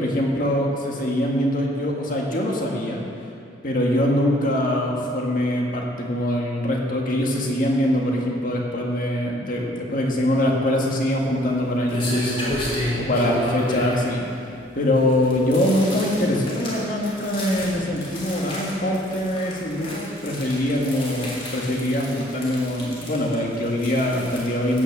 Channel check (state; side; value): normal; both; correlation 0.59